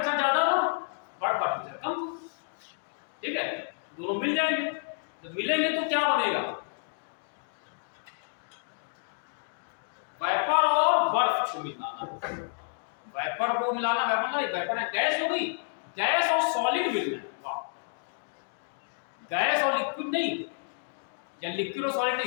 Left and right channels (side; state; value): right; silent; digital silence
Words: ज्यादा हो बर्फ का टेम्परेचर कम, ठीक है, दोनों मिल जाएंगे। जब मिलेंगे तो क्या बनेगा, वेपर और बर्फ को मिलाना, वेपर को मिलाना, वेपर है गैस हो गई, गैस और सॉलिड मिलना है, वाह, गैस और लिक्विड नहीं, या लिक्विड और सॉलिड